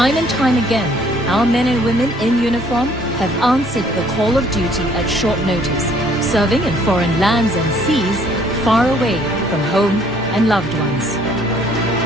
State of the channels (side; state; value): both; normal; correlation 0.61